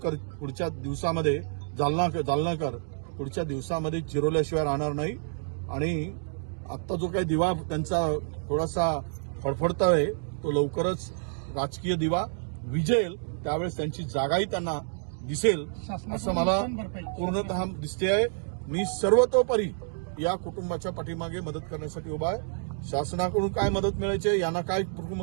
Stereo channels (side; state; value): left; silent; digital silence